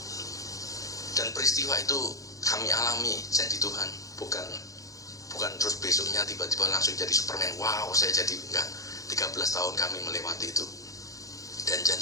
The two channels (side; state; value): right; late; 0.16 ms